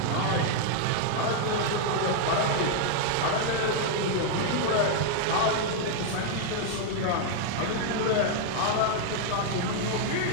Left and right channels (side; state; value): both; different; correlation 0.00